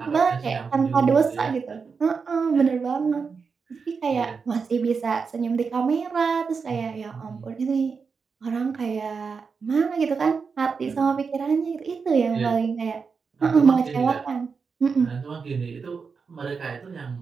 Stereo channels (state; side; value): quieter; left; 5.3 dB